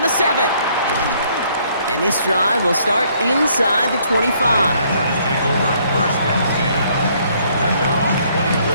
the 7. And this drive will start inside the 25.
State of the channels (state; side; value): inverted; both; correlation -0.65